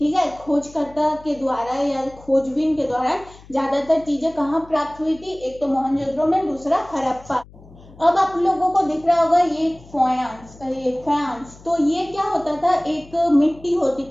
है, खोजकर्ता के द्वारा या खोजबीन के द्वारा ज्यादातर चीजें कहाँ प्राप्त हुई थी, एक तो मोहनजोदड़ो में, दूसरा हड़प्पा। अब आप लोगों को दिख रहा होगा ये फयांस, तो ये क्या होता था, एक मिट्टी होती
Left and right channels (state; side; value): noise; left; hum, 22 dB below the sound